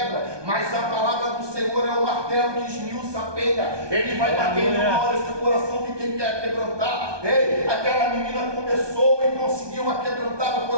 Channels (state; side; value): late; left; 1.2 ms